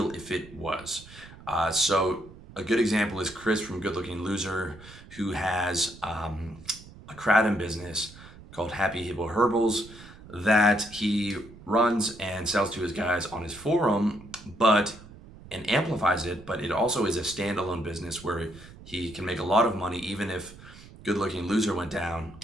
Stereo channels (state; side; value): noise; right; rumble, 19 dB below the sound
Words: if it was. So a good example is Chris from Good Looking Loser, who has a kratom business called Happy Hippo Herbals that he runs and sells to his guys on his forum, and amplifies it, but it also is a standalone business where he can make a lot of money even if Good Looking Loser went down